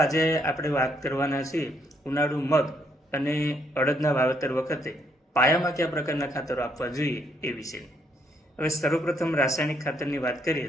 આપણે વાત કરવાના છીએ ઉનાળુ મગ અને અડદના વાવેતર વખતે પાયામાં કયા પ્રકારના ખાતરો આપવા જોઈએ એ વિશે. હવે સર્વપ્રથમ રાસાયણિક ખાતરની વાત કરીએ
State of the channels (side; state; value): both; normal; correlation 0.72